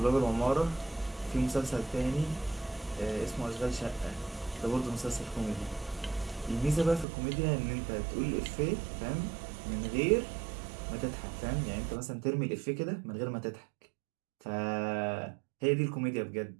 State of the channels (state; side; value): drops out; left; at 7.1 s